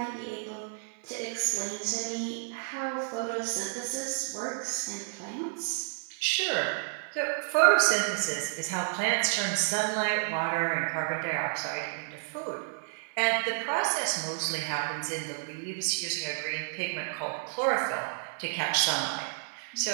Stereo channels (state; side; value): silent; left; digital silence